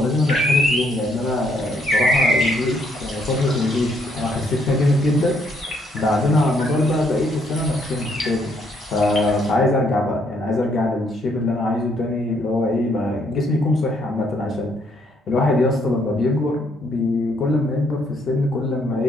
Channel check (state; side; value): normal; both; correlation 0.71